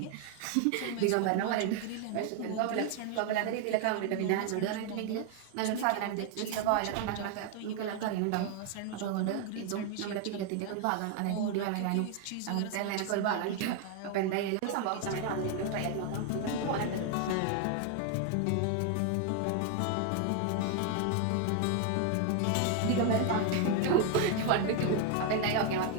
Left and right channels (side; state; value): both; different; correlation 0.00